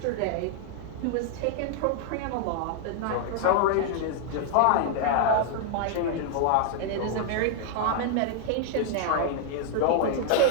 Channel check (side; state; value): both; different; correlation -0.01